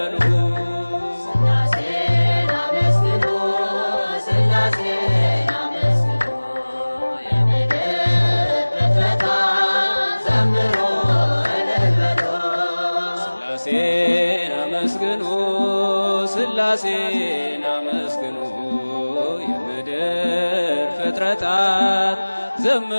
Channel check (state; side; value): inverted; both; correlation -1.00